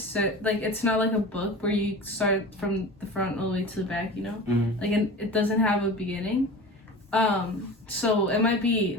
like, it's not like a book where you start from the front all the way to the back, you know? Mm-hmm. Like, it doesn't have a beginning. So it might be,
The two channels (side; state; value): both; normal; correlation 0.35